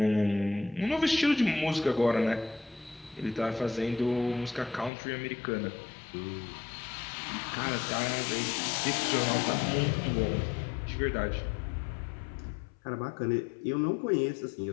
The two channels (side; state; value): right; drops out; at 4.9 s